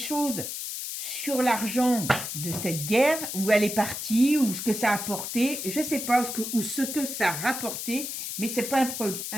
sur l'argent de cette guerre, où elle est partie, ou ce que ça a apporté? Je ne sais pas, ou ce que ça a rapporté, mais ce n'est pas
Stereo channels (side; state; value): left; noise; hiss, 5 dB below the sound